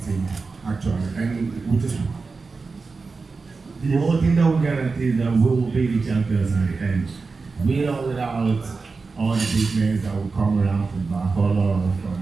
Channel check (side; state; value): left; quieter; 4.3 dB